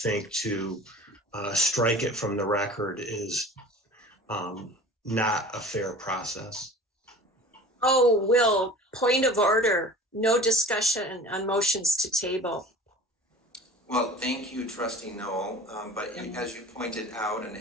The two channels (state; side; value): normal; both; correlation 0.42